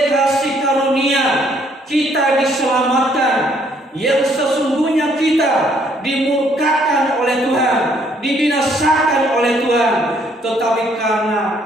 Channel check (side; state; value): both; normal; correlation 0.66